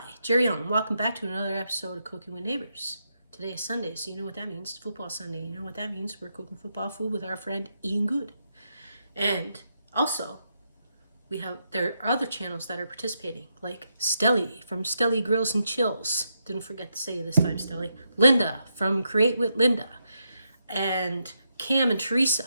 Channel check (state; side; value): inverted; both; correlation -0.82